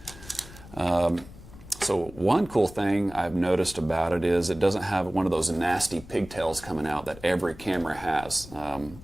So one cool thing I've noticed about it is it doesn't have one of those nasty pigtails coming out that every camera has.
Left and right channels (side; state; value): left; noise; rumble, 18 dB below the sound